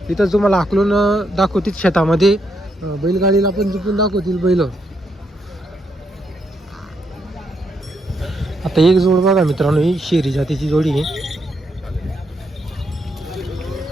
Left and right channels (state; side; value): normal; both; correlation 0.78